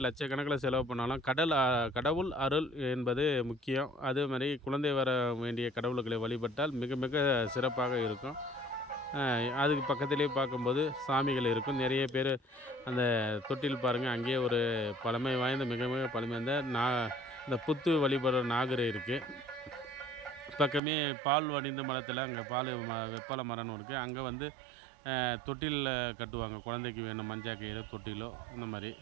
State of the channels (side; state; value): left; drops out; at 20.8 s